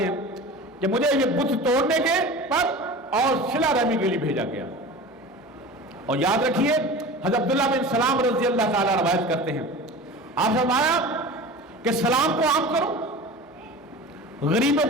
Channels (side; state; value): both; normal; correlation 0.35